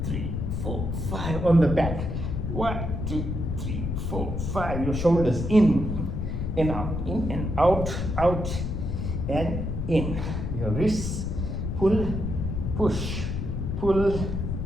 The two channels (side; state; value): left; noise; rumble, 2 dB below the sound